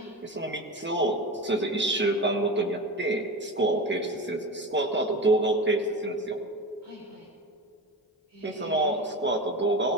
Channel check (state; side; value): normal; both; correlation 0.26